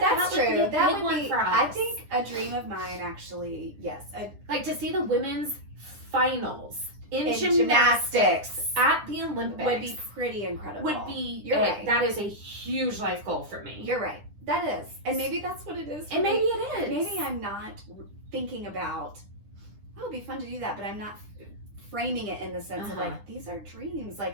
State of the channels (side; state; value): left; late; 9.9 ms